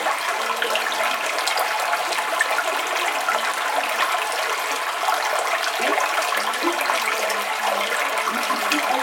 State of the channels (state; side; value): identical; both; correlation 1.00